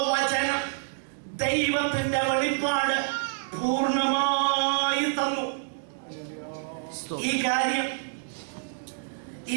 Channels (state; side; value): silent; left; digital silence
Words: ദൈവത്തിന്റെ വെളിപ്പാട് പൂർണ്ണമായി തന്നു. ഈ കാര്യം ഈ